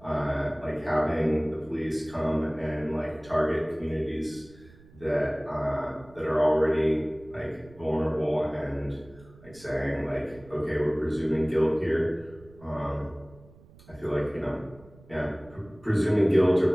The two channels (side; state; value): right; noise; rumble, 24 dB below the sound